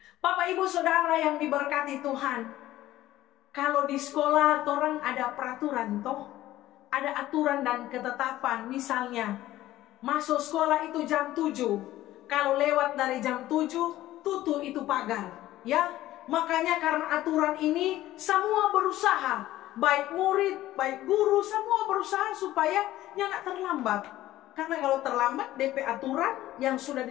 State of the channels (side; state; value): right; quieter; 15.0 dB